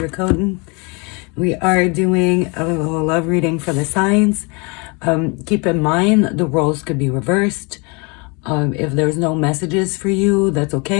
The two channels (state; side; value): quieter; right; 30.4 dB